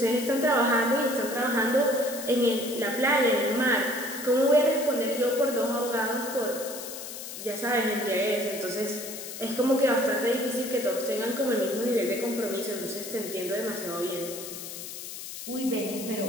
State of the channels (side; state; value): left; noise; hiss, 10 dB below the sound